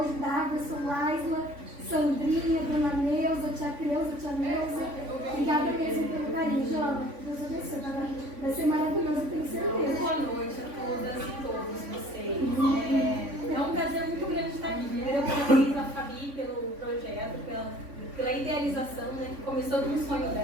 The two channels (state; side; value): late; left; 3.5 ms